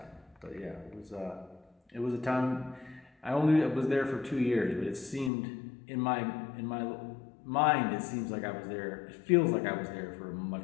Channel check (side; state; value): right; drops out; at 5.3 s